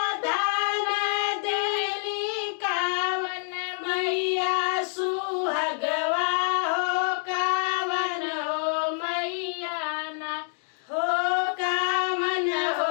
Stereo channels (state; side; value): silent; right; digital silence